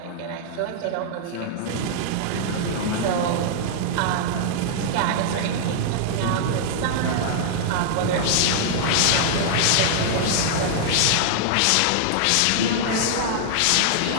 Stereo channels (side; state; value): both; different; correlation -0.01